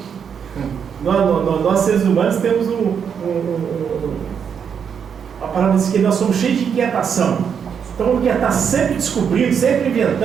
Nós seres humanos temos a palavra diz que nós somos cheios de inquietação. Então quer estar sempre descobrindo, sempre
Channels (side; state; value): left; quieter; 7.3 dB